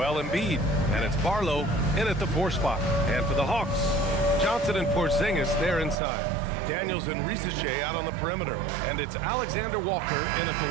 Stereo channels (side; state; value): left; drops out; at 6.0 s